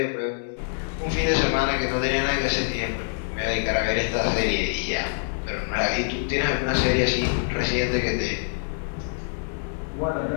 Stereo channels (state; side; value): silent; right; 62 dB below the other